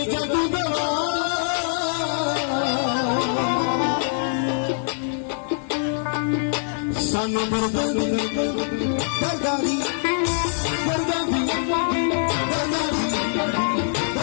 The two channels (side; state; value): right; silent; digital silence